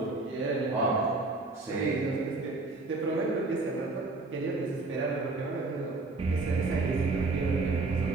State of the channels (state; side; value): quieter; left; 3.3 dB